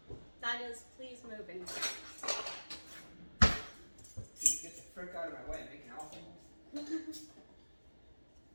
That is, please move in. Dude, get the frick out of my way, I'm making alcohol.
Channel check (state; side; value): inverted; both; correlation -1.00